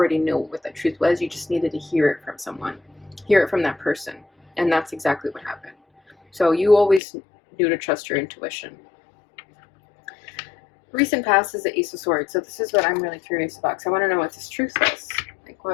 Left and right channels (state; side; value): drops out; right; at 7.0 s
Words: knew what that truth was. You just needed to hear it from someone, hear it from that person, and that's exactly what happened. So you always knew to trust your intuition. Recent past is the Ace of Swords. So this is what I'm really curious about, because I want to know what this truth is. Like